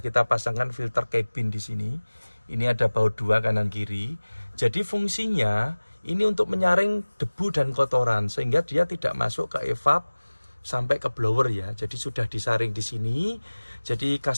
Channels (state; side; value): inverted; both; correlation -1.00